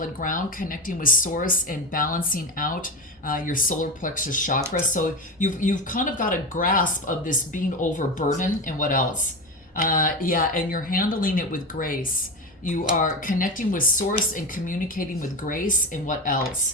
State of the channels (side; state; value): both; normal; correlation 0.22